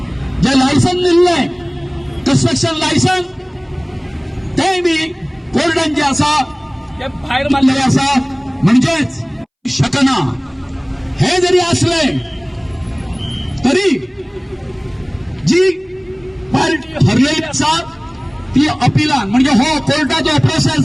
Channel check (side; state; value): both; identical; correlation 1.00